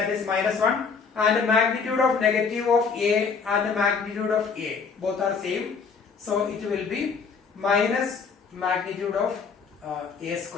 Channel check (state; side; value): quieter; right; 5.4 dB